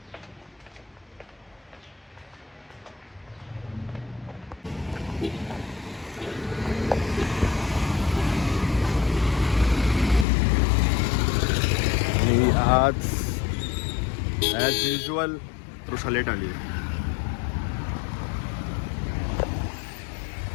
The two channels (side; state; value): right; drops out; at 10.2 s